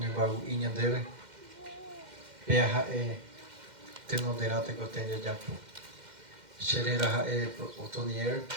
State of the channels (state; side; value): late; left; 2.1 ms